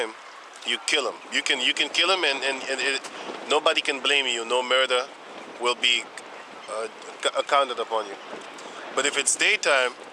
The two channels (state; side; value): identical; both; correlation 1.00